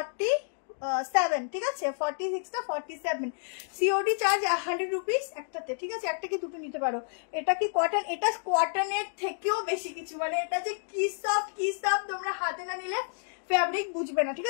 ঠিক আছে, 46টা 47। সিওডি চার্জ 100 রুপিস একটাতে, ঠিক আছে, একটা কি দুটো নিতে পারো। এটা কি কটন? এটা কটনের থেকেও বেশি কিছু, মানে এটা যে কি সফট তোমরা হাতে না নিলে ফ্যাব্রিক বুঝবে না, ঠিক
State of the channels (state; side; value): silent; right; digital silence